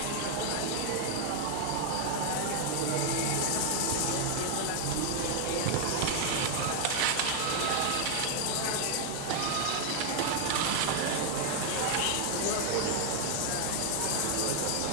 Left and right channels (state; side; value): different; both; correlation 0.00